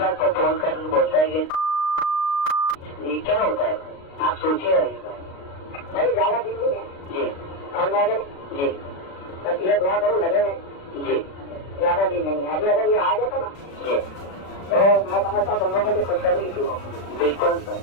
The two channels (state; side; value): late; right; 36 ms